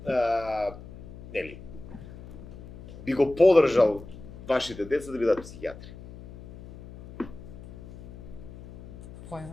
Нели? би го поддржал вашите деца да бидат психијатри?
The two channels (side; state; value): left; noise; hum, 15 dB below the sound